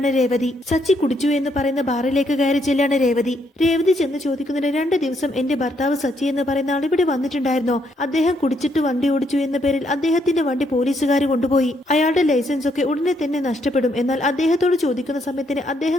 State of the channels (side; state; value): both; normal; correlation 0.74